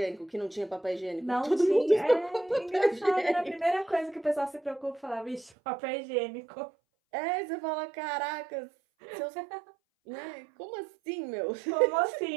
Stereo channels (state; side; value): drops out; left; at 5.5 s